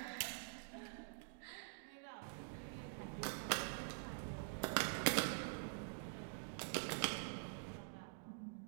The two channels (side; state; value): left; silent; digital silence